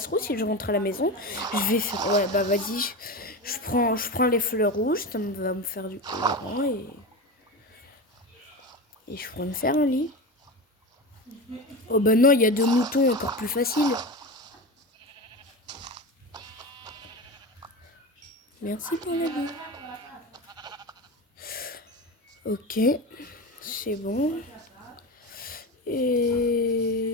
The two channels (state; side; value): normal; both; correlation 0.24